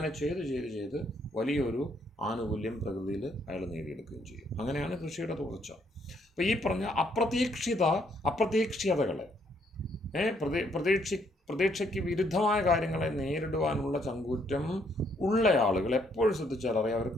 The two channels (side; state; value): both; normal; correlation 0.70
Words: ചെയ്ത് വലിയൊരു ആനുകൂല്യം പ്രകൃതിയിൽ അയാൾ നേടിയെടുക്കുകയും ചെയ്യും. അങ്ങനെയാണ് കൃഷിയുടെ തുടർച്ച. അപ്പോൾ ഈ പറഞ്ഞ അപ്രതീക്ഷിതകളെ പ്രതീക്ഷയ്ക്ക് വിരുദ്ധമായ കാര്യങ്ങളെ നേരിടുവാനുള്ള ചങ്കൂറ്റം ഉള്ള ആളുകൾ എപ്പോഴും ശ്രദ്ധിച്ചാൽ അറിയാം,